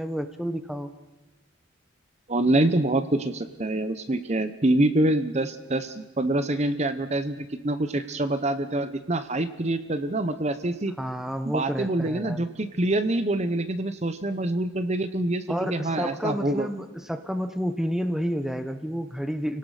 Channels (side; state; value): both; normal; correlation 0.66